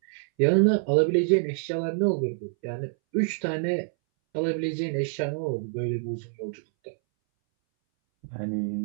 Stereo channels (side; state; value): left; silent; 60 dB below the other